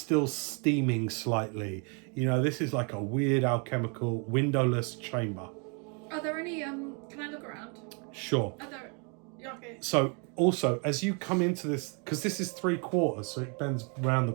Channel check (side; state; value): left; quieter; 35.8 dB